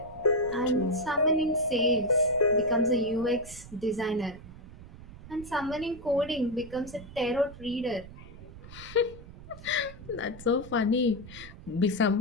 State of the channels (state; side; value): noise; right; rumble, 16 dB below the sound